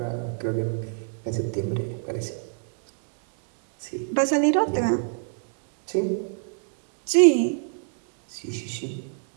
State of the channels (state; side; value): silent; left; digital silence